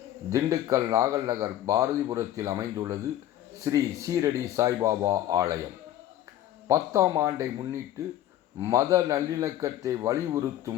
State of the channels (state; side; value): quieter; right; 12.7 dB